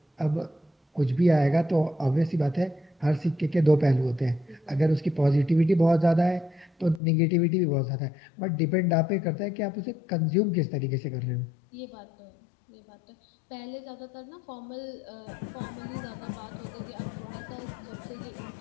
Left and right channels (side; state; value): right; drops out; at 7.0 s